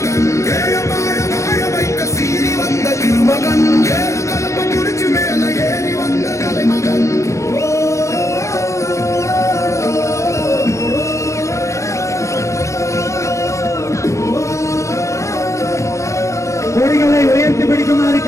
வாழ வைக்க சீறி வந்த திருமகன் கலப்ப குடிச்சு மேல ஏறி வந்த தலைமகன் கொடிகளை உயர்த்தி பிடிக்குமாறு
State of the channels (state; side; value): late; right; 0.15 ms